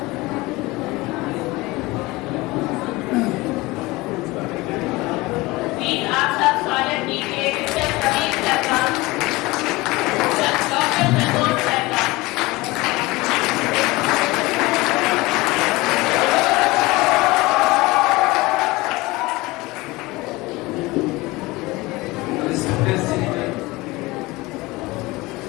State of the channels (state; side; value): quieter; right; 21.5 dB